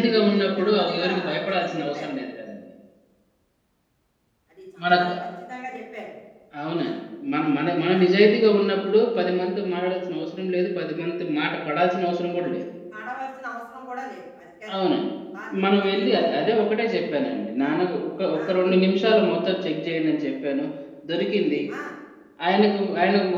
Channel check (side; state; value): both; identical; correlation 1.00